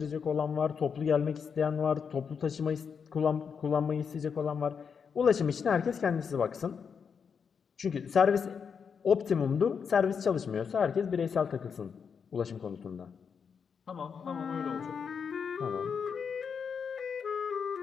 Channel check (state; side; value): quieter; right; 6.4 dB